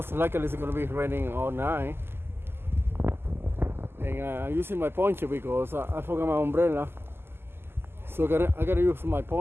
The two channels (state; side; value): late; left; 0.11 ms